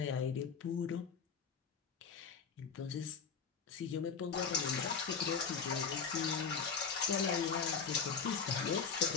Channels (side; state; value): right; quieter; 6.1 dB